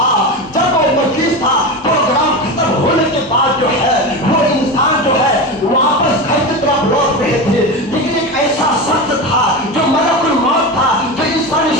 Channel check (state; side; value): normal; both; correlation 0.22